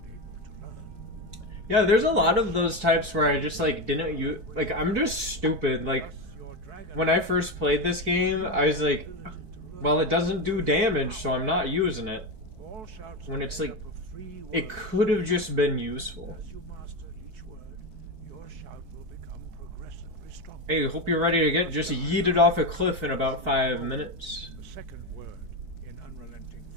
Yeah, there's a lot of those types where I just like didn't use. Like, I'm just stupid. Like, when I first played this game, I was like, well, it doesn't do damage, so I'm not using it. When it's like, it could have just been useful. Hey, hope you're ready to get just yeeted off a cliff in about 5 minutes. The second word in unrelenting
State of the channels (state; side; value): late; left; 4.6 ms